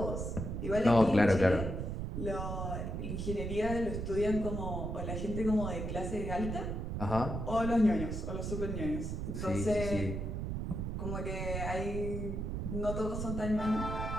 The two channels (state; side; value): noise; right; rumble, 3 dB below the sound